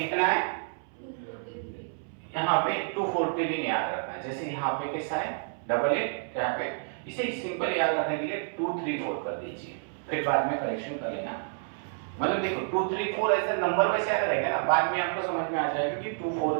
है? यहाँ पे 240 दिन याद रखना है। जैसे यहाँ पे कैसा है? डबल है, यहाँ पे इसे सिंपल याद रखने के लिए 234 कर दीजिए, फिर बाद में करेक्शन कर लेना। मतलब देखो 234 ऐसा नंबर वैसे याद रहेगा ना, बाद में आपको समझ में आ जाएगा कि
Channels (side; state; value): left; silent; 58 dB below the other